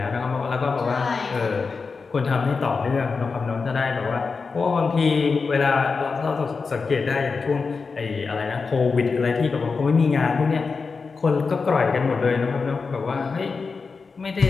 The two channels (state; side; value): quieter; right; 4.7 dB